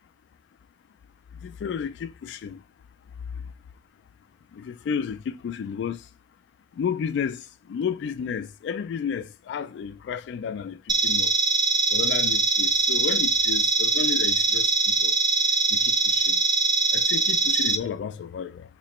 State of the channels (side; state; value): both; normal; correlation 0.25